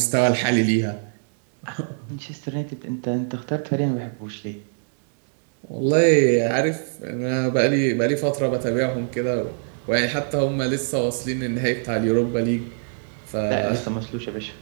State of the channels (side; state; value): left; silent; digital silence